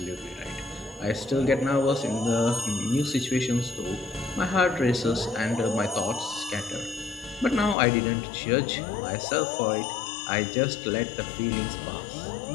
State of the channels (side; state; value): right; drops out; at 7.8 s